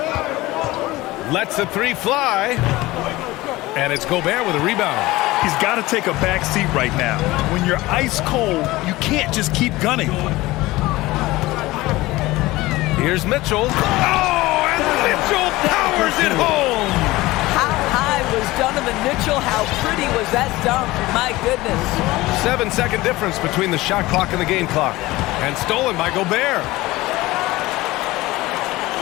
Lets the three fly. And it's Gobert with a rebound. He's got to take a back seat right now. When you're ice cold, you can't just keep gunning. Here's Mitchell. Oh, and Mitchell powers it home. How high was Donovan Mitchell? How pretty was that dunk? My goodness. 7-second difference between the shot clock and the game clock. And stolen by Gobert.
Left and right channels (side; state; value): right; quieter; 19.2 dB